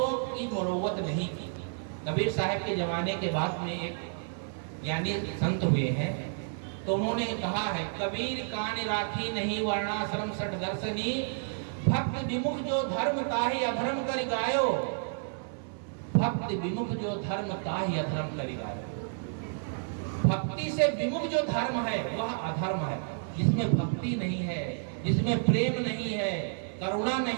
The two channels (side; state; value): left; silent; digital silence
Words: की मुरव्वत नहीं की। कबीर साहब के जमाने के बाद में एक ज्ञानी संत हुए हैं, तो उन्होंने कहा है, कबीर कान राखी नहीं वर्णाश्रम सठ दर्शनी, भक्त विमुख जो धर्म ताहि अधर्म कर गायो, भक्त विमुख जो धर्म ताहि अधर्म कर गायो। भक्ति से विमुख जो धर्म है वह अधर्म है। जिसमें भक्ति नहीं है, जिसमें प्रेम नहीं है, करुणा